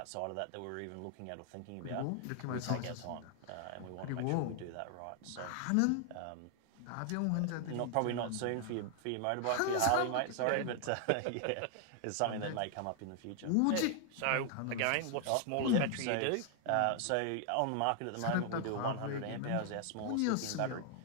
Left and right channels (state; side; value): different; both; correlation 0.00